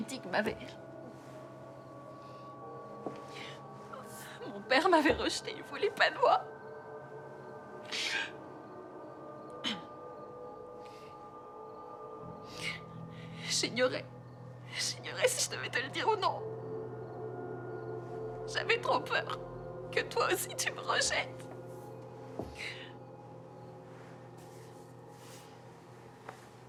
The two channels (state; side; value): identical; both; correlation 1.00